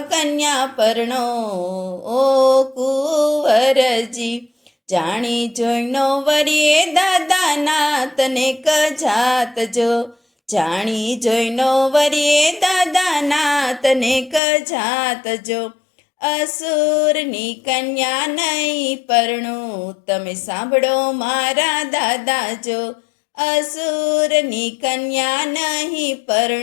કન્યા પરણો। ઓ કુંવરજી, જાણી જોઈનો વરીએ દાદાના તને કજાત જો। જાણી જોઈનો વરીએ દાદાના તને કજાત જો। અસુરની કન્યા નહીં પરણું, તમે સાંભળો મારા દાદા જો। અસુરની કન્યા નહીં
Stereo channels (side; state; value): right; drops out; at 14.4 s